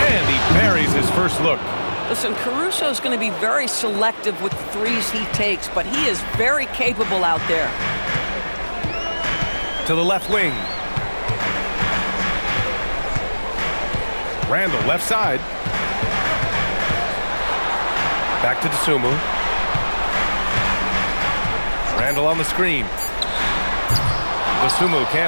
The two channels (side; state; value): both; inverted; correlation -1.00